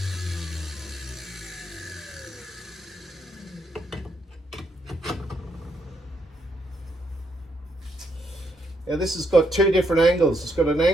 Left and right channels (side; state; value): both; normal; correlation 0.76